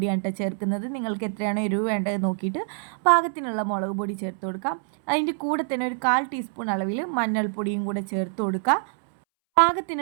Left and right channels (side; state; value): left; silent; 61 dB below the other